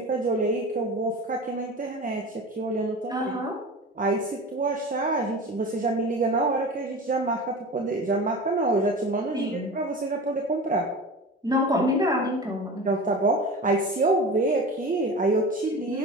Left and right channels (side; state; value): both; normal; correlation 0.33